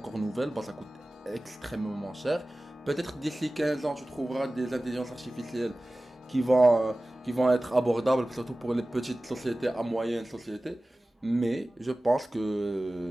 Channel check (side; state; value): both; normal; correlation 0.97